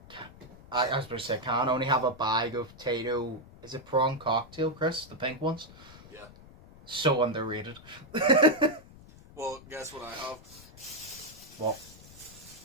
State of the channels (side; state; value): left; noise; rumble, 20 dB below the sound